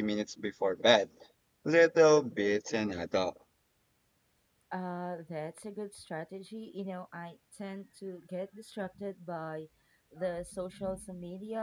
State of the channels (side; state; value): both; identical; correlation 1.00